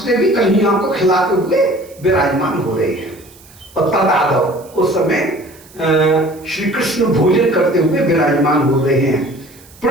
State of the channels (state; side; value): noise; right; hiss, 25 dB below the sound